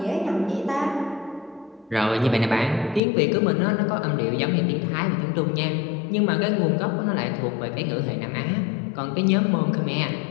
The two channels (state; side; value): drops out; right; at 3.0 s